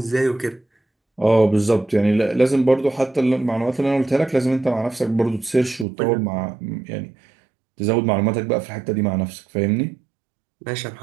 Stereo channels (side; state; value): left; drops out; at 5.9 s